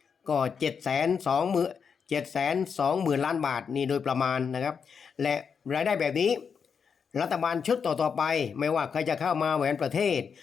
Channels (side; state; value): right; quieter; 6.4 dB